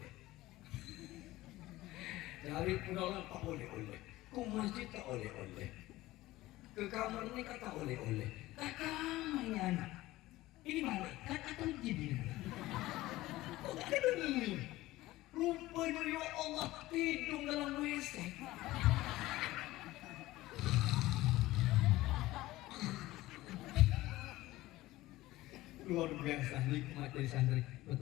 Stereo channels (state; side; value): quieter; right; 17.5 dB